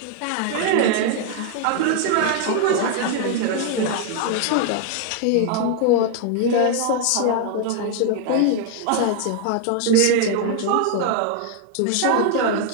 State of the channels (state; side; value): different; both; correlation 0.00